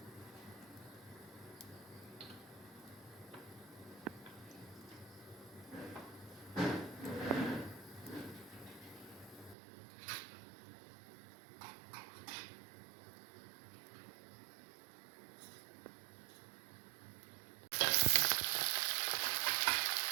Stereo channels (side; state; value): left; drops out; at 9.6 s